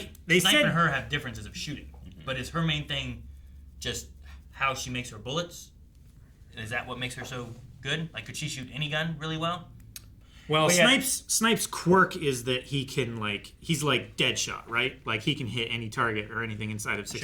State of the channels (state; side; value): identical; both; correlation 1.00